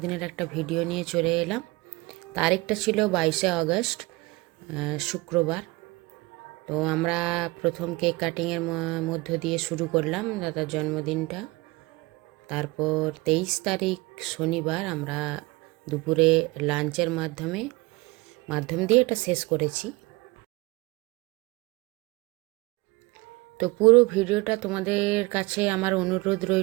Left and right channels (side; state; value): left; quieter; 23.0 dB